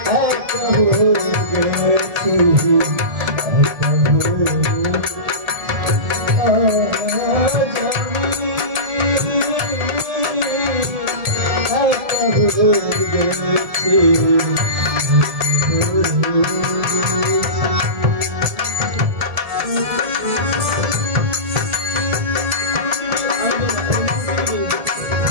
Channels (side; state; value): left; late; 1.7 ms